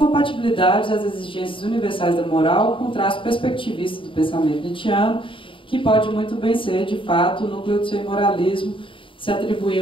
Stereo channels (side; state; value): right; late; 0.25 ms